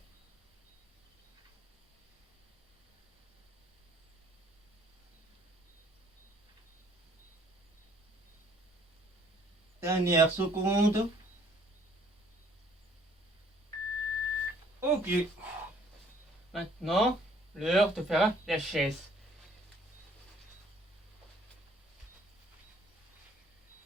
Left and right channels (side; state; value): both; normal; correlation 0.60